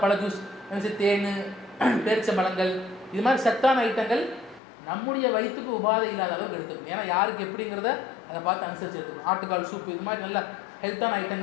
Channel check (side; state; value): right; drops out; at 4.6 s